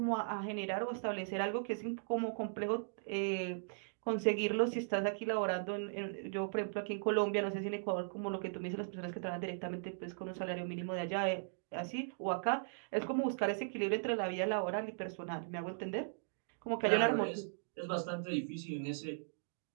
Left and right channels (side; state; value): left; silent; digital silence